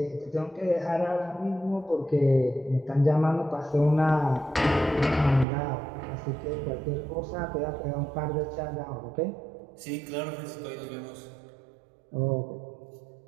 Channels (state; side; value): drops out; left; at 5.5 s